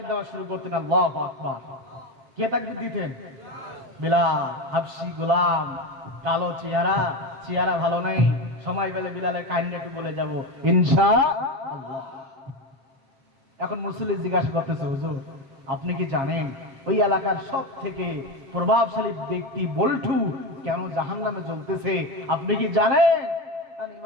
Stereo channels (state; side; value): late; left; 7.4 ms